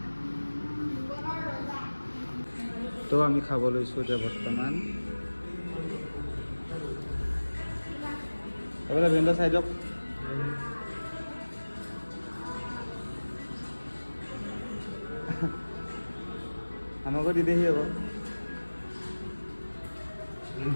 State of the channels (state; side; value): inverted; both; correlation -1.00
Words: তো আমি খাব লৈছো এতিয়া বৰ্তমান এবাৰ ভেন্ডা চাই দিয়ক আমাকো দি দেহি আকৌ